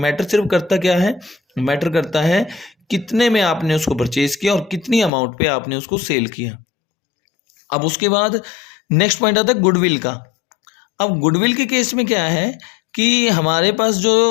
सिर्फ करता क्या है, मैटर करता है कितने में आपने उसको परचेज किया और कितनी अमाउंट पे आपने उसको सेल किया। अब उसके बाद नेक्स्ट पॉइंट आता है गुडविल का। अब गुडविल के केस में क्या है कि हमारे पास जो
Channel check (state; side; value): drops out; right; at 5.1 s